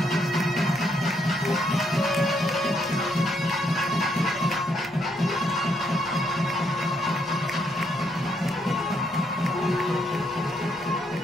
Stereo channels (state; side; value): noise; left; rumble, 30 dB below the sound